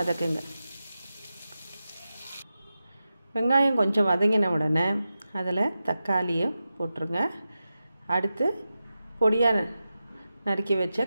வெங்காயம் கொஞ்சம் வதங்கின உடனே அதில் தக்காளியை போட்டுருங்க. அடுத்து பொடியாக நறுக்கி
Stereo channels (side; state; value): both; inverted; correlation -0.92